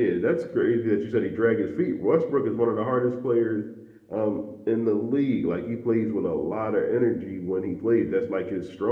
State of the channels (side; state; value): both; identical; correlation 1.00